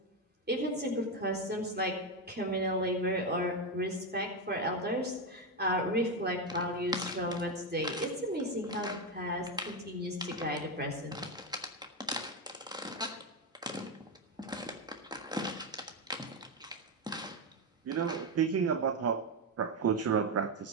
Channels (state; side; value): normal; both; correlation 0.09